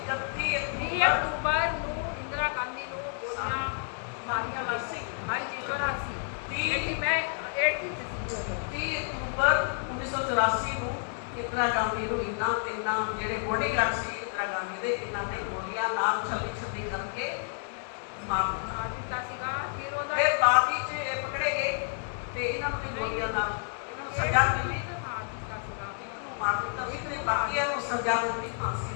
ਅਕਤੂਬਰ ਨੂੰ ਇੰਦਰਾ ਗਾਂਧੀ ਨੂੰ ਗੋਲੀਆਂ ਮਾਰੀਆਂ ਗਈਆਂ ਸੀ। ਹਾਂਜੀ 84 30 ਅਕਤੂਬਰ 1984 ਨੂੰ ਇੰਦਰਾ ਗਾਂਧੀ ਨੂੰ ਤਿੰਨਾਂ ਜਿਹੜੇ ਬੋਡੀਗਾਰਡ ਸੀ ਇੰਦਰਾ ਗਾਂਧੀ ਦੇ, ਇਹਨਾਂ ਨੇ ਗੋਲੀਆਂ ਨਾਲ ਛੱਲੀ ਕਰਕੇ ਮਾਰ ਦਿੱਤਾ ਸੀਗਾ। ਫਿਰ ਬਾਅਦ ਵਿੱਚ ਇਹ ਪਕੜੇ ਗਏ ਤੇ ਇਹਨਾਂ ਨੂੰ ਵੀ ਗੋਲੀਆਂ ਨਾਲ ਇਹਨਾਂ ਨੂੰ ਸਜ਼ਾ ਮਿਲੀ, ਇਹਨੂੰ ਮਾਰ ਦਿੱਤਾ ਸੀ ਤੇ ਬਾਕੀਆਂ ਨੂੰ ਸਜ਼ਾ ਦਿੱਤੀ, ਫਾਂਸੀ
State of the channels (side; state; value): right; silent; 58 dB below the other